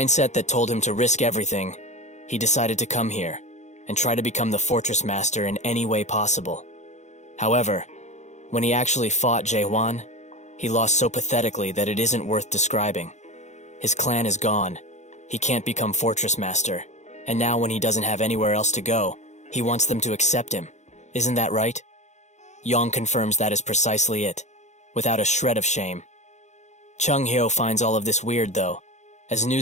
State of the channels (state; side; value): late; right; 0.34 ms